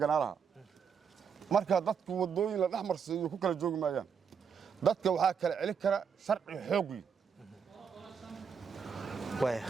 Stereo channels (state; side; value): quieter; left; 6.7 dB